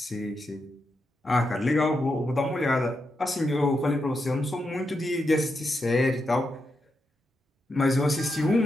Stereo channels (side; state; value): both; normal; correlation 0.85